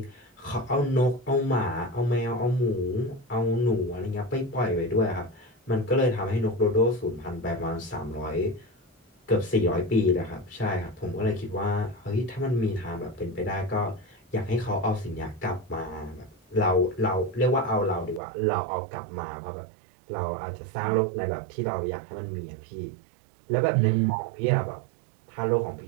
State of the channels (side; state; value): left; drops out; at 18.2 s